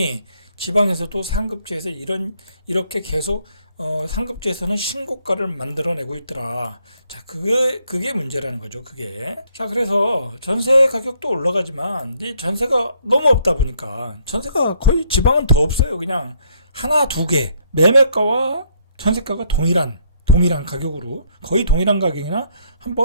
지방에서도 상급지에서 이렇게 계속 상급지에서는 신고가를 만들어내고 있더라. 자, 그게 문제라는 거죠. 그게. 자, 그래서 전세 가격도 올라가지만 이 전세가 너무 없다 보니까, 전세가 거의 지방은 더 없어요. 그냥 하나, 두 개. 매매가와 전세가가 동일한 가격으로, 거의 동일한 가격이나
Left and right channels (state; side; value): inverted; both; correlation -0.67